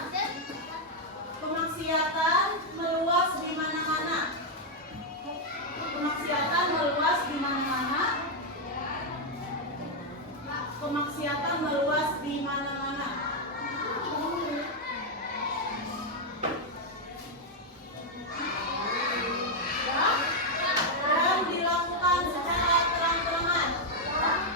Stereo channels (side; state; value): both; normal; correlation 0.00